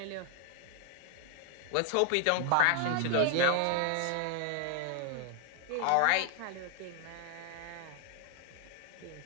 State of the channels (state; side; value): different; both; correlation 0.01